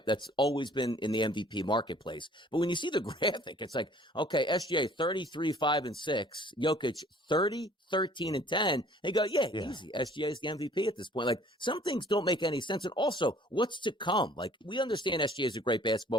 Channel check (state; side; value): normal; both; correlation 0.55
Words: That's always been in the MVP marketplace. But when you see the graphic, it's like, okay, SGA 33, 5, and 6, Jokic 30, 13, and 10. And you go, yeah, easy. SGA is the MVP at this point. Like, some things don't make any sense. And also, what's to come? Like, we understand SGA is a great